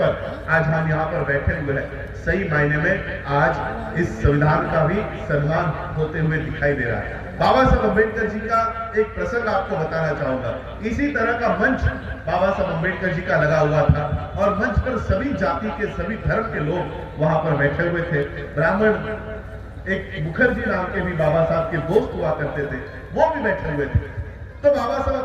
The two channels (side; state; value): both; identical; correlation 1.00